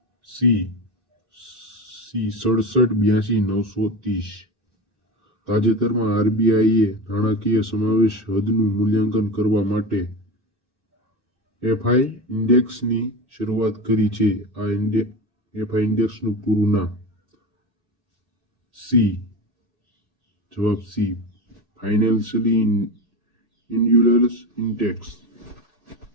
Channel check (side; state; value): left; late; 2.6 ms